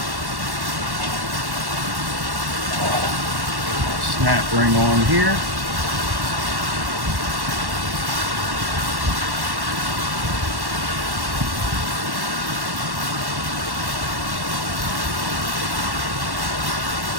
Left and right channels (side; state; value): left; late; 1.1 ms